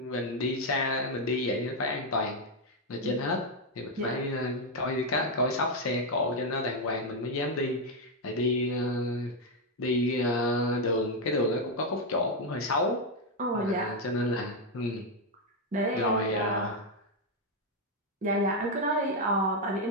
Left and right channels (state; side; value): normal; both; correlation 0.03